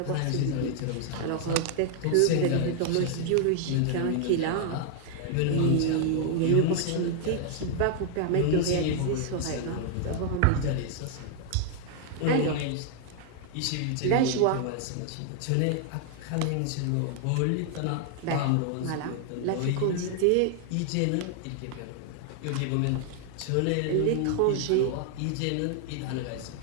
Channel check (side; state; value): both; different; correlation 0.00